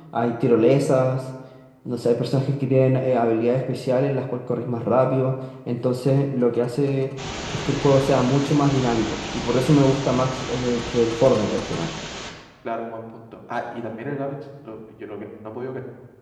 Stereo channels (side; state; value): both; identical; correlation 1.00